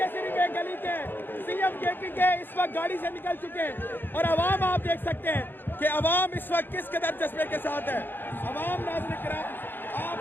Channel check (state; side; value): late; right; 0.097 ms